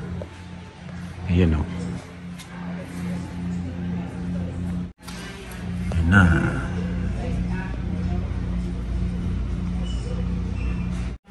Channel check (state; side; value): identical; both; correlation 1.00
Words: Ayan o. Ayan na.